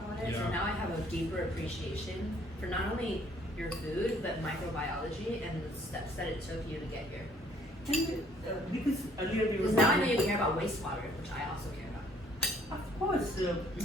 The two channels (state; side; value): normal; both; correlation 0.61